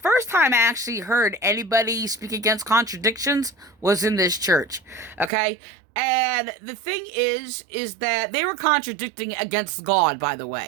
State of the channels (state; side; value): drops out; left; at 5.3 s